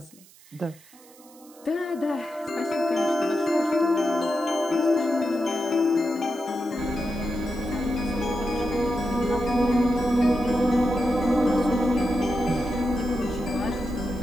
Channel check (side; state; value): right; noise; hiss, 25 dB below the sound